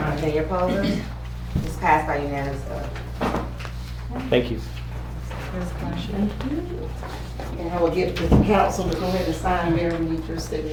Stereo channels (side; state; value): both; identical; correlation 1.00